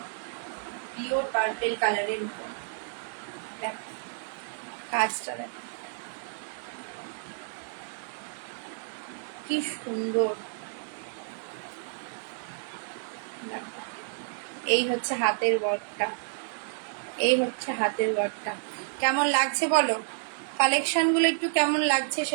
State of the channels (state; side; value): silent; left; digital silence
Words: পিওর পার্পেল কালারের উপর। দেখো কাজটা দেখো কি সুন্দর। দেখো এই হচ্ছে হাতের ওয়ার্কটা, এই হচ্ছে হাতের ওয়ার্কটা। কেমন লাগছে বলো, কালেকশন গুলো একটু কেমন লাগছে